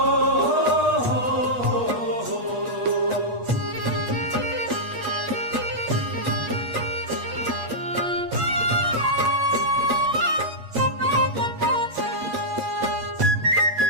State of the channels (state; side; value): late; left; 8.3 ms